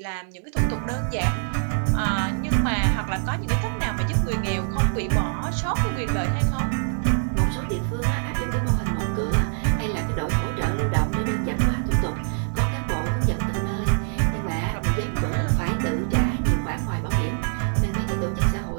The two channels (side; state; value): left; silent; 62 dB below the other